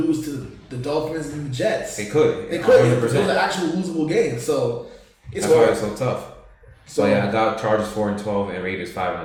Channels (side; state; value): both; identical; correlation 1.00